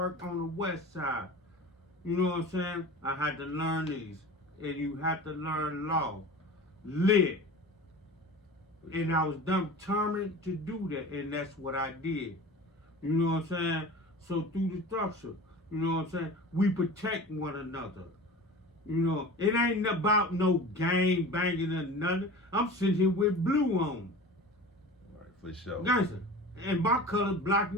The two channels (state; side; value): normal; both; correlation 0.36